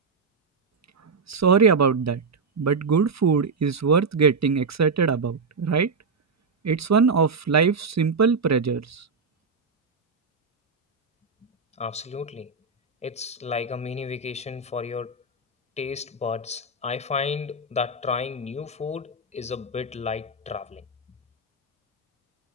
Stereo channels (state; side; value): quieter; left; 4.2 dB